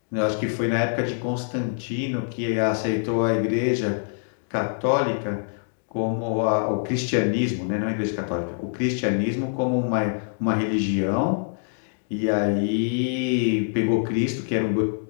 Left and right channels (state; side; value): silent; right; digital silence